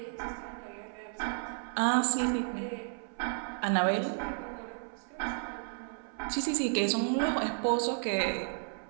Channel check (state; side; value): silent; left; 56 dB below the other